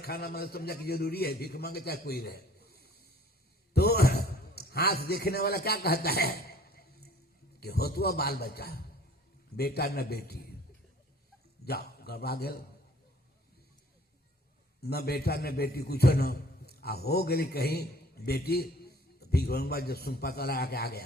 मतलब समझा कि जरूरी है, भीख मांगे चाहे कोई रहे। तो हाथ देखने वाला क्या कहता है कि होतुआ बाल बच्चा, बेटा न बेटी, जाओ गड़बड़ा गल, न बेटा न बेटी कुछ न आ हो गई कहीं बेटी तो भीख मंगवा जब सुन पता लगा के आ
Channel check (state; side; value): normal; both; correlation 0.53